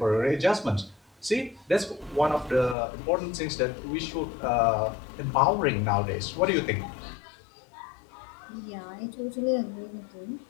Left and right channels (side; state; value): right; drops out; at 2.8 s